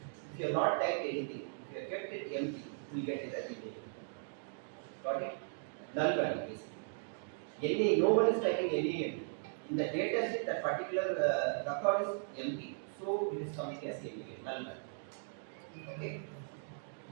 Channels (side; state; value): left; silent; digital silence